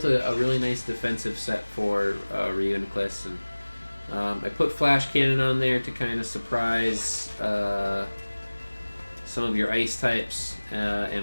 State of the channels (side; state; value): both; inverted; correlation -1.00